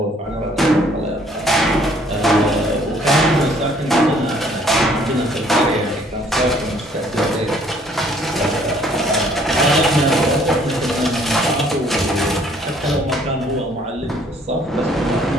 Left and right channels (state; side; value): normal; both; correlation 0.61